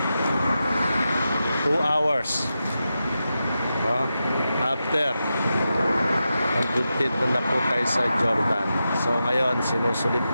So 2 hours, no? After nandito na po tayo sa Jordan. So ngayon sinusulit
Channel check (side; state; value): both; inverted; correlation -0.90